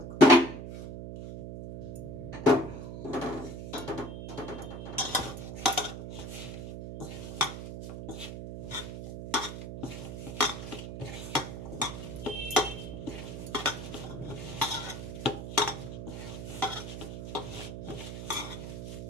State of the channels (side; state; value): right; noise; hum, 8 dB below the sound